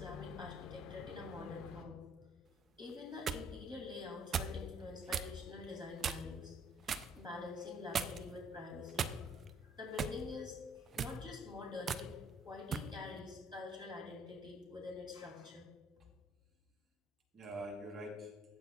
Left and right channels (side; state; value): both; normal; correlation 0.61